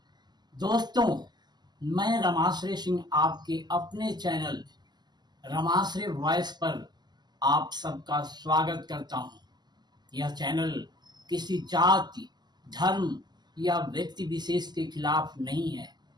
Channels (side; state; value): left; late; 0.21 ms